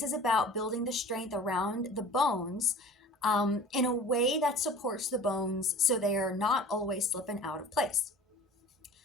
is about building the strength around the bones in a way that supports the bones so they are not always slipping out of place.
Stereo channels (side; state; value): both; normal; correlation 0.43